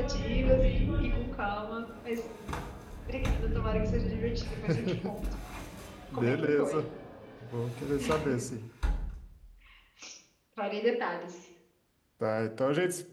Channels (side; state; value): both; identical; correlation 1.00